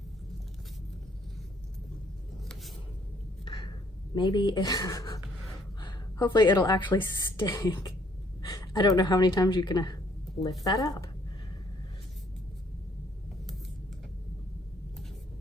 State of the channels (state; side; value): normal; both; correlation 0.64